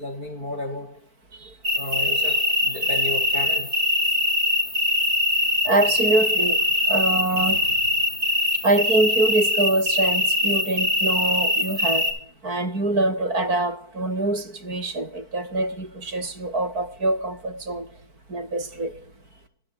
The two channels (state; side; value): late; left; 4.5 ms